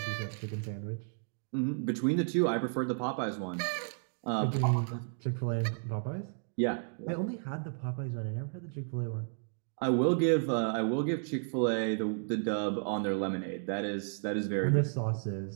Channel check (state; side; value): silent; left; digital silence